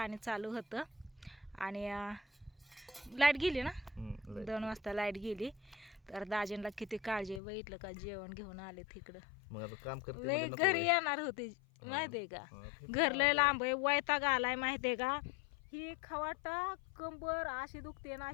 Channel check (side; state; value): right; drops out; at 7.4 s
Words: चालू होतं. आणि लाईट गेली ना, 2 वाजता लाईट गेली. तर दाजींना किती काळजी आहे, बघितलं का? जेवण घेऊन आले तिकडं. घरी येणार होते माहितीये का? घर लय लांब आहे, वैताग आलाय माहितीये का? ही खवाटा कंबर अशी दुखते ना,